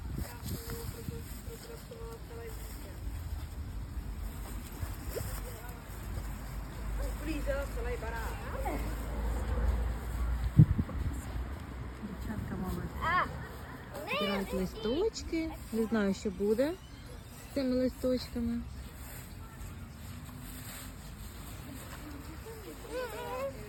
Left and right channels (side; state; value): both; identical; correlation 1.00